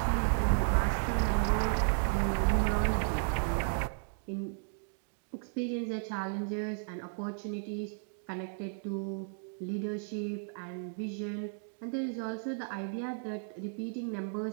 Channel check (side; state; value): left; silent; digital silence